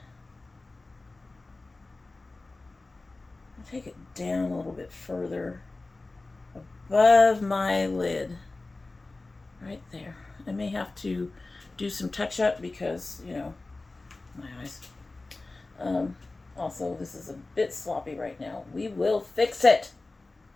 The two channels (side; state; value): right; quieter; 3.3 dB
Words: I'll take it down a little bit further above my lid. Right there. I may have to do some touch up because, you know, my eyes. Also, this is a bit sloppy right now. We will fix it.